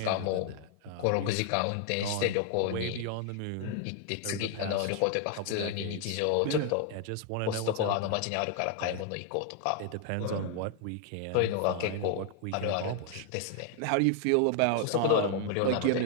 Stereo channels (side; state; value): both; different; correlation 0.00